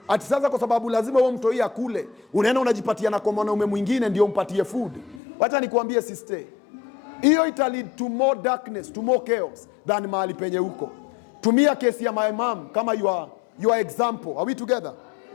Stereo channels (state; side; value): drops out; right; at 5.2 s